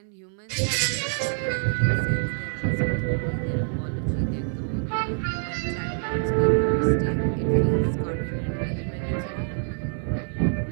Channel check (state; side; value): silent; left; 61 dB below the other